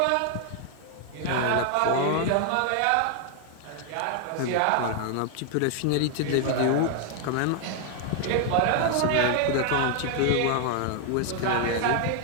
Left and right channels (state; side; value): different; both; correlation 0.00